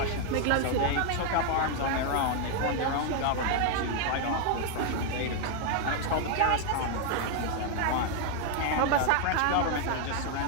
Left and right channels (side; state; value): both; different; correlation 0.00